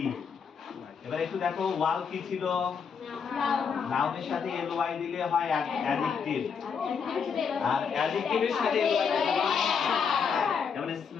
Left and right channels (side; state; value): right; quieter; 6.3 dB